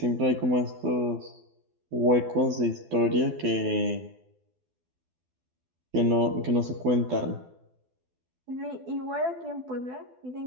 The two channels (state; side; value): late; left; 12 ms